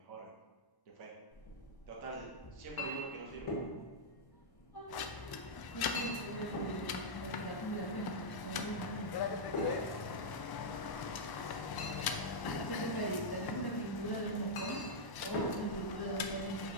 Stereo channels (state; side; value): late; right; 1.0 ms